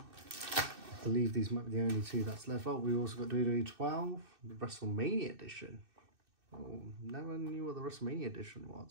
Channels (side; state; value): left; late; 2.6 ms